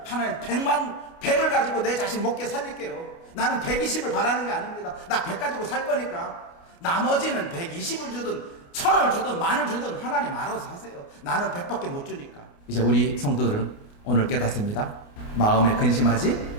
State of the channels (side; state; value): right; late; 29 ms